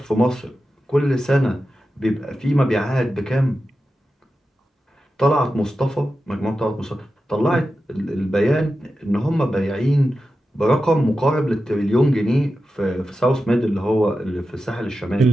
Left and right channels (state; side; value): normal; both; correlation 0.91